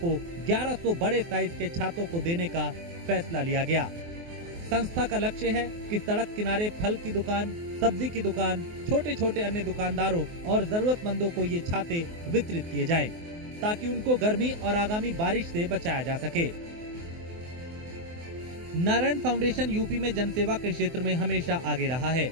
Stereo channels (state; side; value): late; left; 24 ms